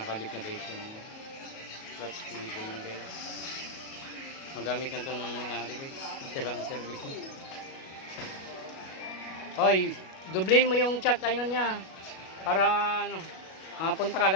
na guys yung clutch cable na guys. Magamit na ito ng may-ari guys, isa lang ang service niya. Hoy, dublin mo yung chat ayun niya para ano, mapunta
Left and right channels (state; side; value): late; right; 37 ms